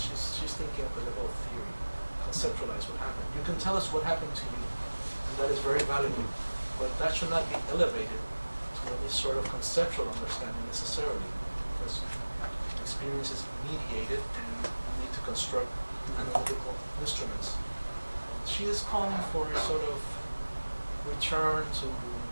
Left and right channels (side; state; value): both; inverted; correlation -1.00